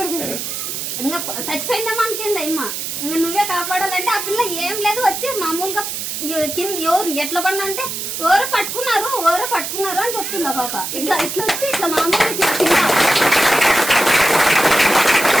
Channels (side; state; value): right; noise; hiss, 5 dB below the sound